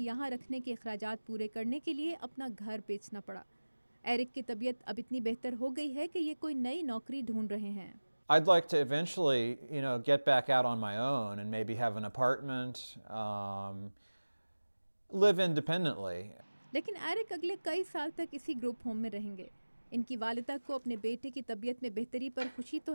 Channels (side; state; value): both; inverted; correlation -1.00